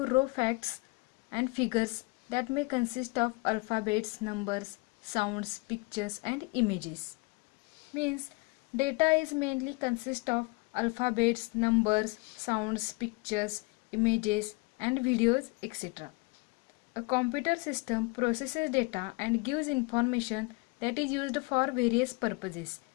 raw facts and figures that may consist of alphabets, numbers, sounds, pictures and images. Means data is mainly consist of alphabets, numbers, sounds, pictures, images and videos, etc. A computer system processes data and gives information that is used for various purposes.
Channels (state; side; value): quieter; right; 27.3 dB